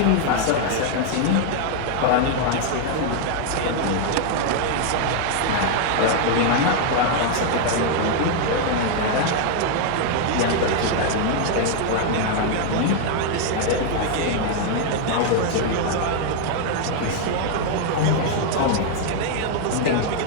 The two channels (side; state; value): both; different; correlation 0.00